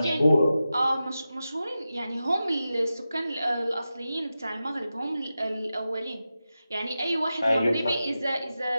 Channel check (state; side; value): inverted; both; correlation -0.92